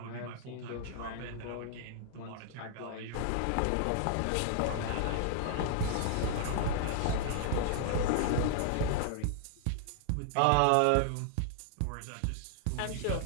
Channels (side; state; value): both; different; correlation 0.00